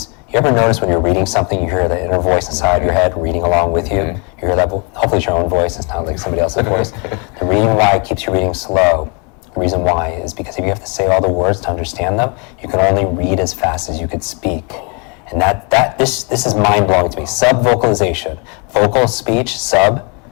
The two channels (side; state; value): right; quieter; 33.4 dB